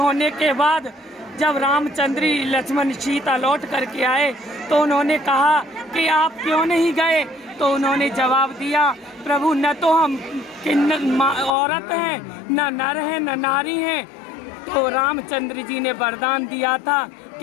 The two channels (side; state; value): right; drops out; at 11.5 s